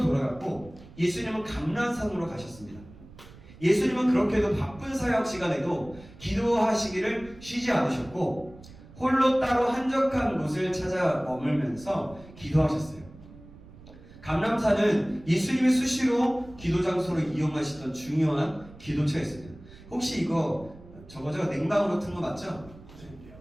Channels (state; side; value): noise; right; rumble, 20 dB below the sound